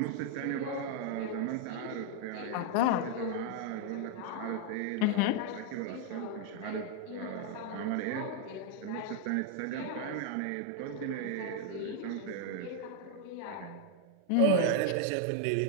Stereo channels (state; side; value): different; both; correlation 0.00